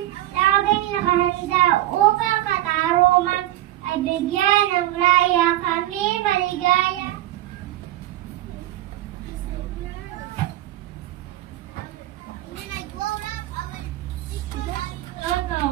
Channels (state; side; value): quieter; left; 14.7 dB